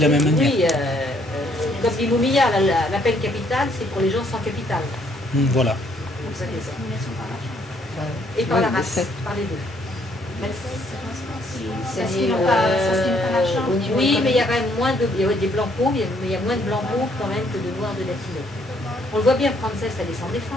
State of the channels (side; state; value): both; normal; correlation 0.67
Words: la même manière. Oui, comme dit Moumia, la peine capitale, c'est pour les gens sans capital. Voilà. Et par la race, par les deux. Oui, mais il y a quand même moins de... Il y a des blancs pauvres, mais il y a moins de blancs pauvres quand même que de noirs de latinos. On le voit bien, Frances, elle est sans